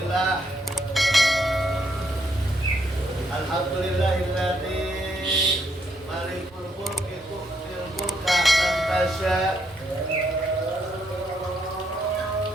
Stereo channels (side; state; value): both; normal; correlation 0.75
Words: Alhamdulillahilladzi malikul mulki tu'til mulka man tasya